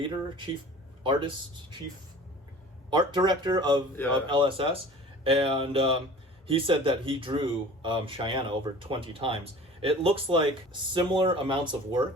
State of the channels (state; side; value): normal; both; correlation 0.43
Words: art director of LSS, and he said that he drew Chyenne over 20 times. It looks like similar amounts of